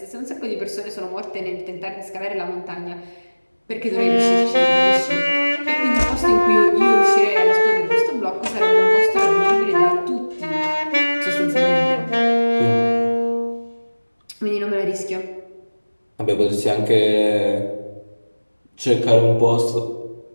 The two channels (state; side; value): inverted; both; correlation -1.00